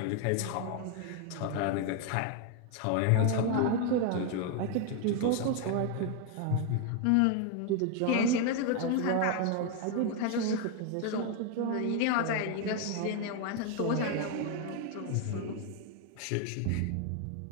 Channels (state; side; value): different; both; correlation 0.01